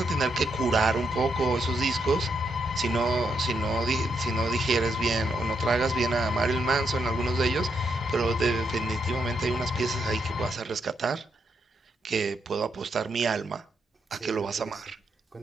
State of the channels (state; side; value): normal; both; correlation 0.79